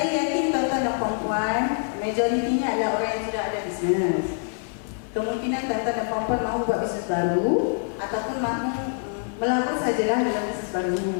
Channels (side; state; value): right; silent; digital silence